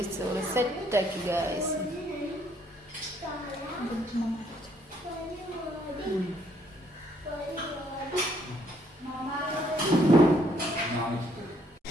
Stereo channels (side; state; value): both; normal; correlation 0.67